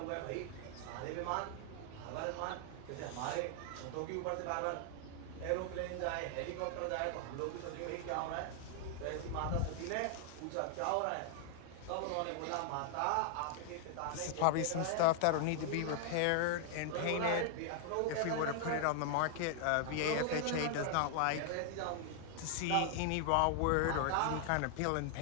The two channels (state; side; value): different; both; correlation 0.00